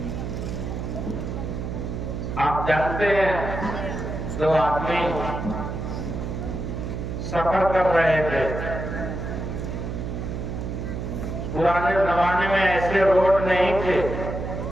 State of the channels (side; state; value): right; noise; hum, 5 dB below the sound